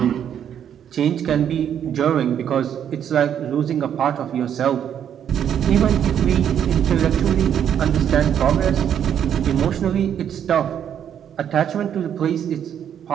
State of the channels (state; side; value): quieter; left; 9.2 dB